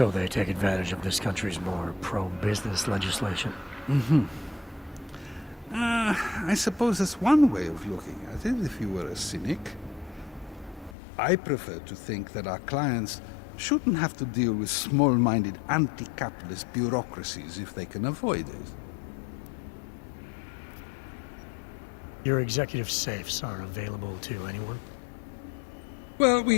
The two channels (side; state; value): right; drops out; at 11.0 s